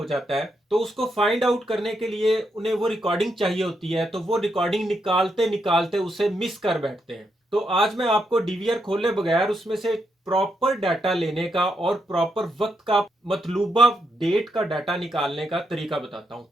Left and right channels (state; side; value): normal; both; correlation 0.81